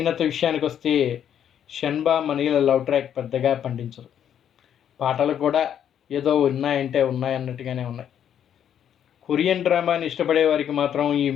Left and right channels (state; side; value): quieter; right; 9.4 dB